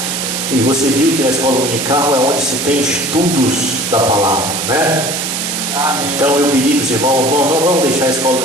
E você viu que na escola dominical é onde se tem estudos da palavra, né? Amém. Então eu pedi para os irmãos: não vamos deixar a escola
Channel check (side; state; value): right; noise; hiss, 3 dB below the sound